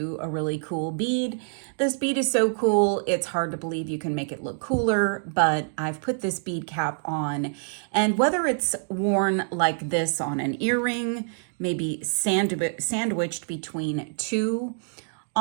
a really cool bead. This bead is so cool, it's hard to believe you can make it look cooler, but I've put this bead cap on, and whether it's worn like this on an earring, maybe sandwiched between two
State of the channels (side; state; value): left; silent; digital silence